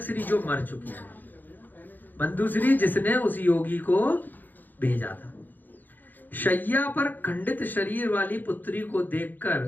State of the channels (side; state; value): right; late; 0.087 ms